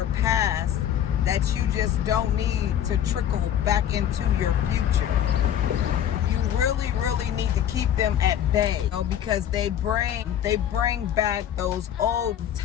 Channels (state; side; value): quieter; right; 10.2 dB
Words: past that you just don't need to trickle back into your future. You really, really need to keep them at bay, because they bring back those old